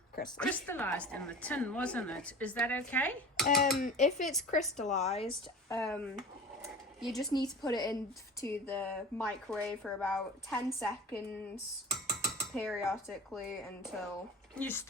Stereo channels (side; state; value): both; normal; correlation 0.37